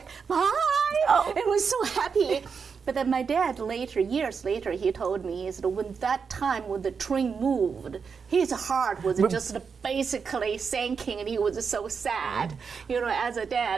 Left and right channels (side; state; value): left; quieter; 5.8 dB